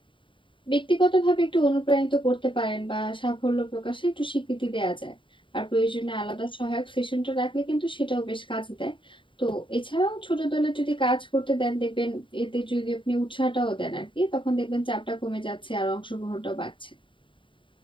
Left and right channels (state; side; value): late; right; 0.24 ms